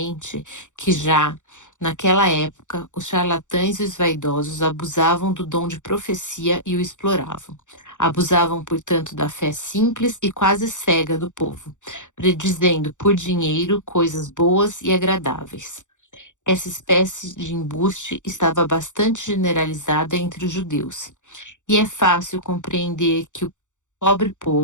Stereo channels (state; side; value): late; right; 0.85 ms